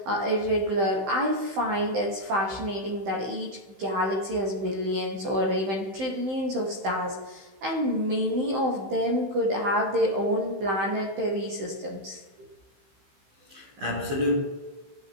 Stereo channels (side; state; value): left; late; 16 ms